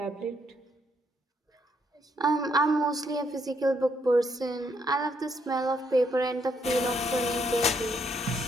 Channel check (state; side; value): normal; both; correlation 0.74